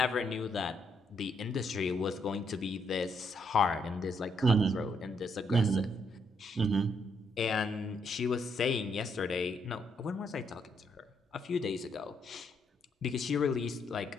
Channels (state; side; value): normal; both; correlation 0.75